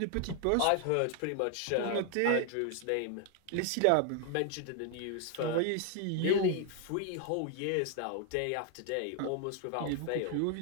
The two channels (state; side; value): different; both; correlation 0.01